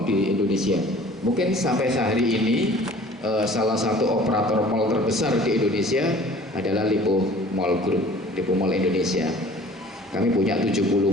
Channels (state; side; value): normal; both; correlation 0.48